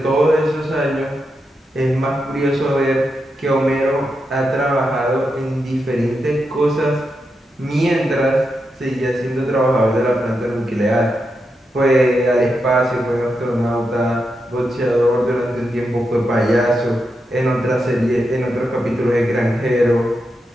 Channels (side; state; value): both; normal; correlation 0.86